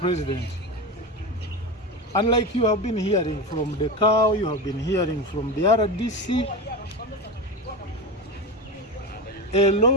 Unlike you have been hearing from the cow, you have been hearing from the RDC, a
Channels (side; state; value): both; normal; correlation 0.22